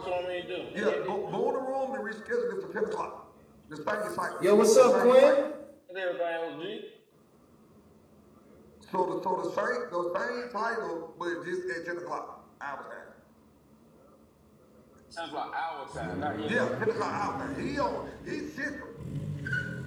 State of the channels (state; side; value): identical; both; correlation 1.00